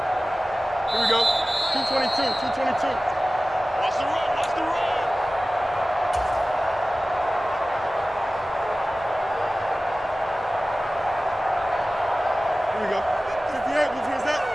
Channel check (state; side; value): normal; both; correlation 0.97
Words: Here we go. 222, 222. Watch the run, watch the run. 58, whose is that?